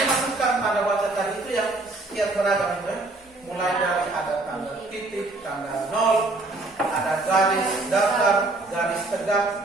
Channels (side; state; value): left; quieter; 3.0 dB